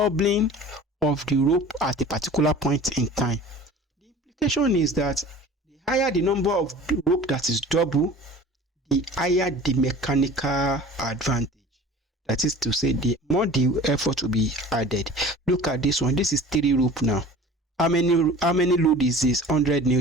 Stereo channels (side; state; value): both; normal; correlation 0.42